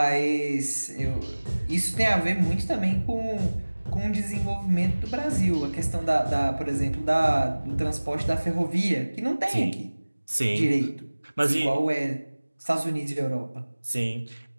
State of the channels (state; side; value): inverted; both; correlation -1.00